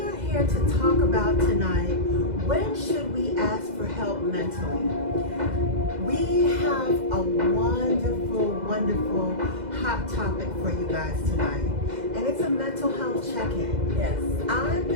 are here to talk about tonight, when should we ask for help mentally? We have a wonderful, wonderful hot topic for you guys tonight. And it's a mental health check-in. Yes. I'm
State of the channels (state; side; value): late; left; 2.0 ms